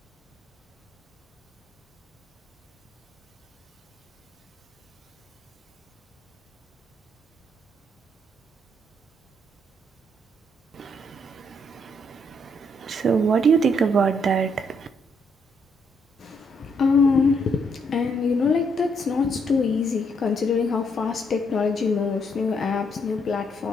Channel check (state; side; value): normal; both; correlation 0.73